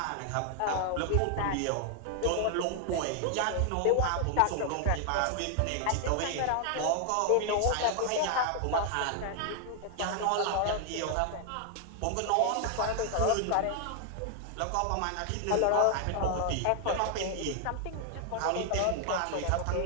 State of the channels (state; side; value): different; both; correlation 0.00